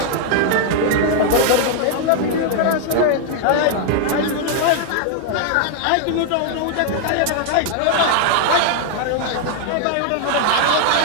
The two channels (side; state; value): both; different; correlation 0.00